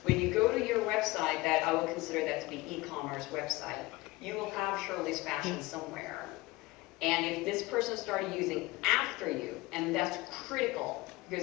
when you go to your website, that I would consider that to be e-commerce website, you will have Shirley's Fashion somewhere. And if this person started using after you, and that's critical,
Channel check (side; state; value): right; quieter; 20.7 dB